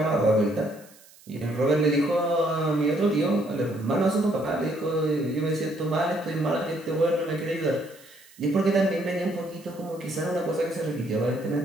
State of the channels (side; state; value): right; noise; hiss, 25 dB below the sound